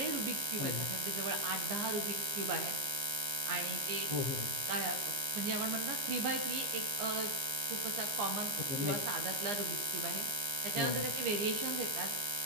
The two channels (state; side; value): late; left; 15 ms